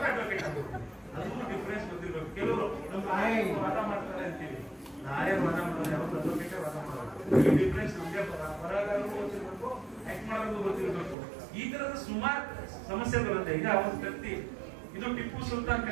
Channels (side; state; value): left; drops out; at 11.2 s